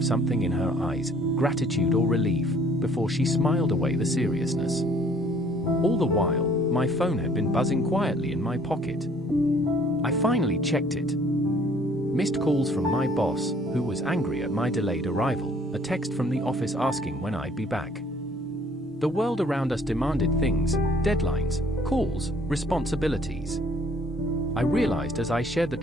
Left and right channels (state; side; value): normal; both; correlation 0.58